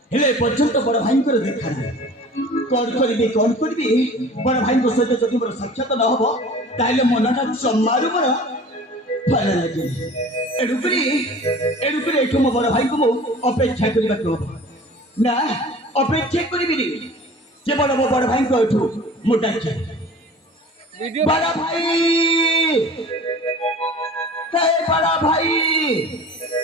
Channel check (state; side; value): normal; both; correlation 0.43